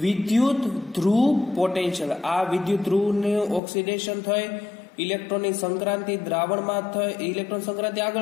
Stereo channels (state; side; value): drops out; right; at 3.6 s